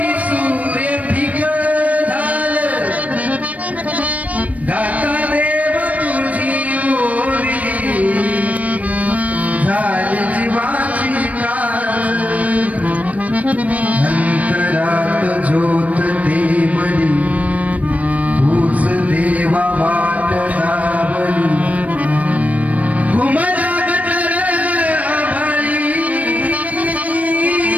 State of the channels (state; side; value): late; left; 0.069 ms